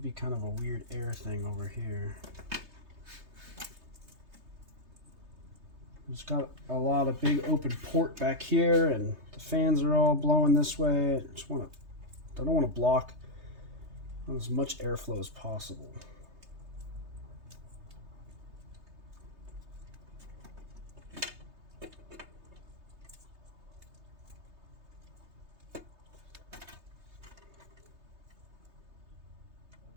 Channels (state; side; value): late; left; 3.2 ms